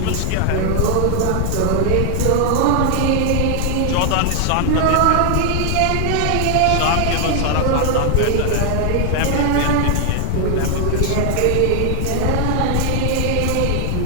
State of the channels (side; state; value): both; different; correlation 0.00